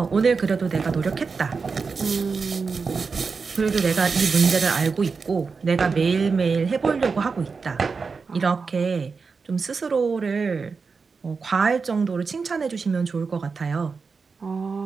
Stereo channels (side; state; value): left; quieter; 4.9 dB